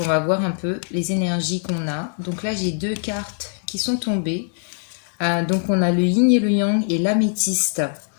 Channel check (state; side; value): silent; right; digital silence